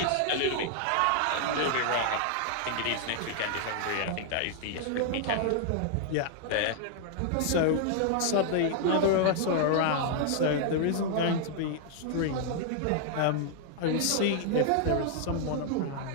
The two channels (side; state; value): both; different; correlation 0.00